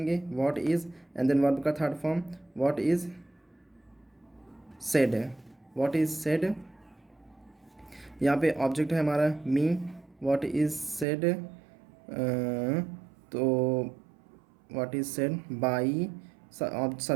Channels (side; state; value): left; drops out; at 11.1 s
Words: what is, and then verb का third form what is said, what is said. यहाँ पे ऑब्जेक्ट है हमारा मी, व्हाट इज़ सेड, तो what is said by,